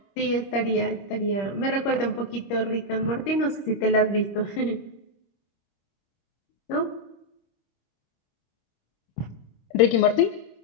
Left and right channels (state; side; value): late; right; 25 ms